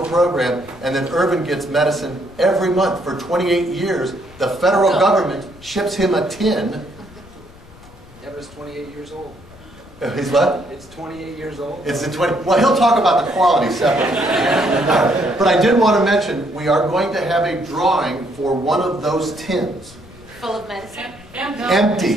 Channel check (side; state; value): left; noise; rumble, 22 dB below the sound